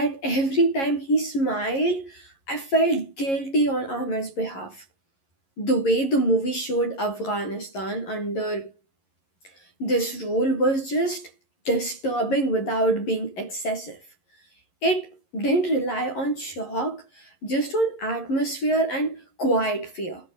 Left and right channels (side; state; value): right; late; 11 ms